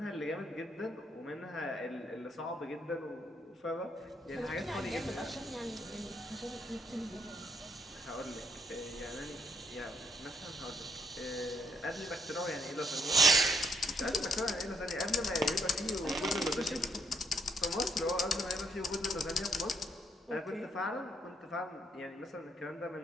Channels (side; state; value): both; normal; correlation 0.72